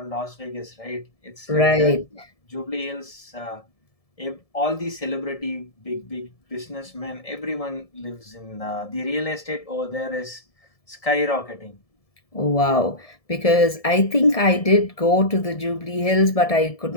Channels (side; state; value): right; late; 1.7 ms